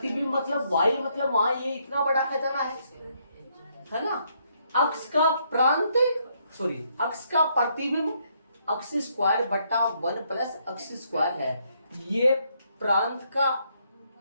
मतलब y, मतलब वहां ये इतना बड़ा खजाना है ना। अक्ष का प्रांत, सॉरी, अक्ष का प्रतिबिंब अक्ष स्क्वायर बटा 1 प्लस अक्ष स्क्वायर है, ये प्रांत का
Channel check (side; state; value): both; inverted; correlation -0.72